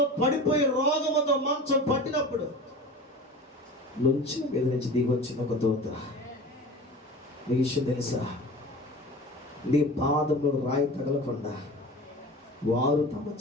పడిపోయి రోగముతో మంచం పట్టినప్పుడు నుంచి మీద నుంచి దిగొచ్చిన ఒక దూత. నీ విషయం తెలుసా? నీ పాదంలో రాయి తగలకుండా వారు తమ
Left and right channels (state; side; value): normal; both; correlation 0.35